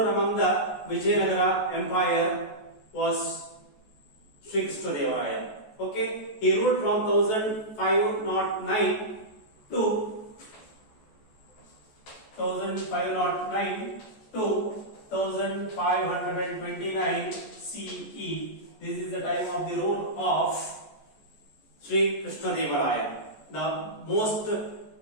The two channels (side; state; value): right; late; 14 ms